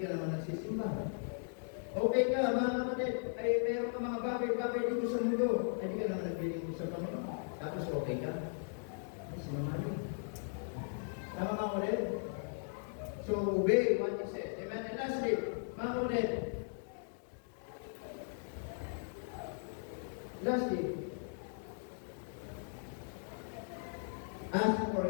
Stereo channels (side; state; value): right; silent; digital silence